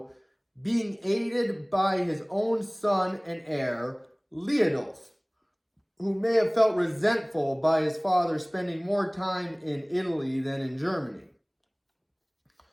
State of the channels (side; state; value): both; identical; correlation 1.00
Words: being aided by his own son and heir, Leodulf, who may have felt resentful by his father spending more time in Italy than in Germany.